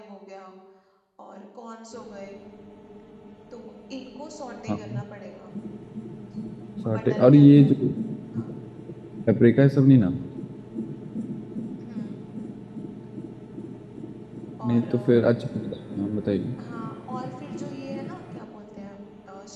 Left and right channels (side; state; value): both; identical; correlation 1.00